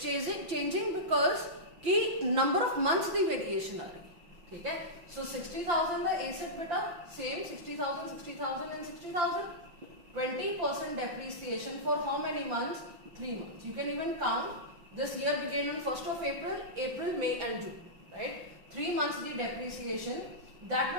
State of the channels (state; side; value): late; left; 5.9 ms